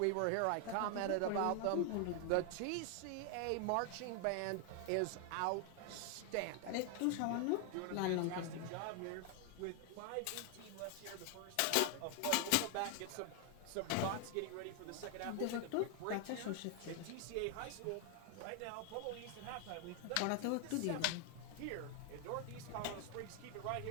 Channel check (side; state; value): both; different; correlation 0.00